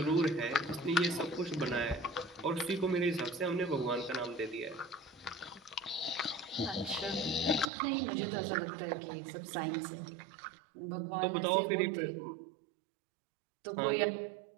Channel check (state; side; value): drops out; left; at 7.7 s